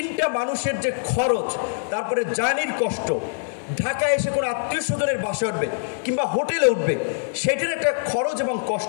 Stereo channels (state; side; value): silent; right; digital silence